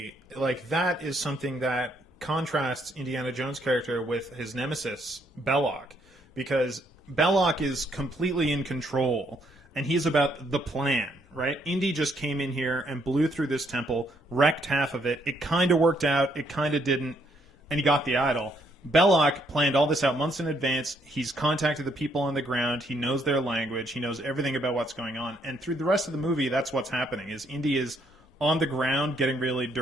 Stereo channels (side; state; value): both; normal; correlation 0.71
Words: like, that is something that contrasts Indiana Jones' character with his nemesis, Belloc, because Belloc is completely in control, and he's about the plan, right? Indy just came in here and blew through this temple, wrecked half of it. It kind of worked out, it kind of didn't, and he got the idol. Belloc planned all this out months in advance. He's contacted the people on the ground. He knows their language. He knows everything about what's going on. And through the rest of the movie, that's what's happening, is Indy is on the ground getting really